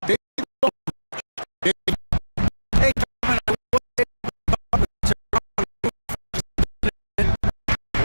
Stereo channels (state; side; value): inverted; both; correlation -1.00